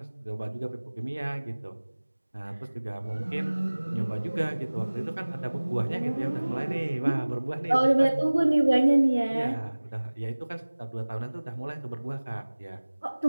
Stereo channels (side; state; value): both; inverted; correlation -1.00